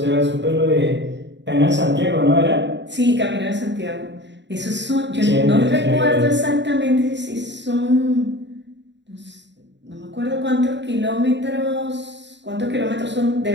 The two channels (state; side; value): late; left; 0.52 ms